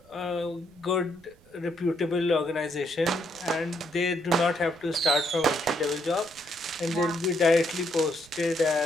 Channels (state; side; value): noise; right; rumble, 28 dB below the sound